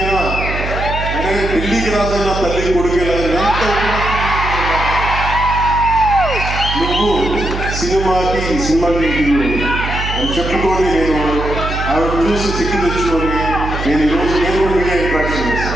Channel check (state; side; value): noise; right; hum, 5 dB below the sound